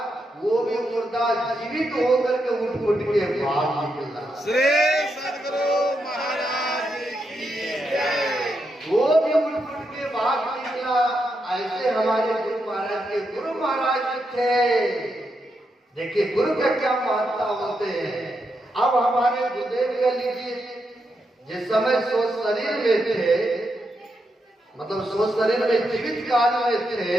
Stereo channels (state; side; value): normal; both; correlation 0.83